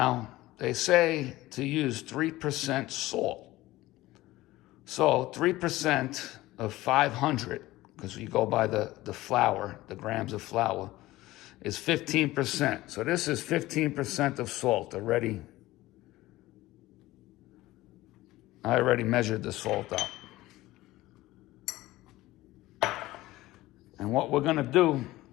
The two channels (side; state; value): right; quieter; 17.6 dB